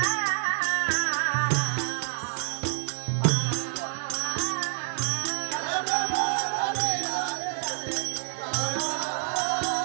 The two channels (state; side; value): silent; left; 60 dB below the other